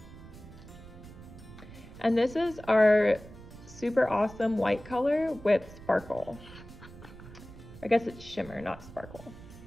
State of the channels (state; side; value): noise; right; rumble, 17 dB below the sound